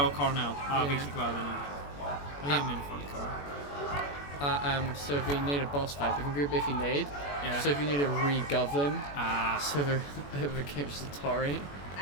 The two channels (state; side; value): late; right; 21 ms